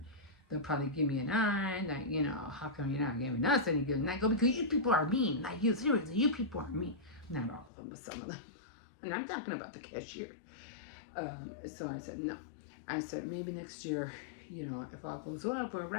they'll probably give me an eye that, you know, how come you're not giving us any gifts? And I go, because you people are mean. Like, you, seriously, you people are mean. Not all of them, but some of them. And I'm talking about the cashier. So I said, no. I said, maybe next year, you know, if all goes well, we're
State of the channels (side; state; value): right; drops out; at 7.7 s